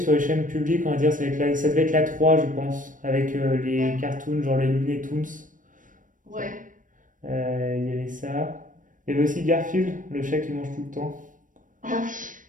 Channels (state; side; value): late; left; 0.38 ms